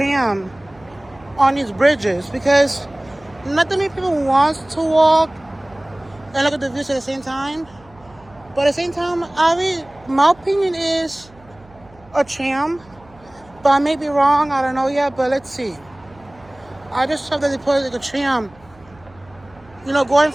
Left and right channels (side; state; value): right; noise; hum, 26 dB below the sound